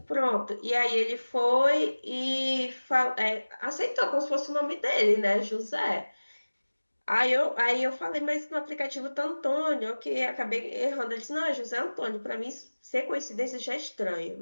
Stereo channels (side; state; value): both; inverted; correlation -1.00